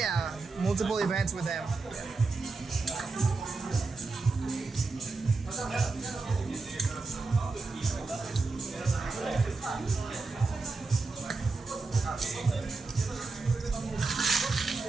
multiple events with them.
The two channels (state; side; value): quieter; left; 3.8 dB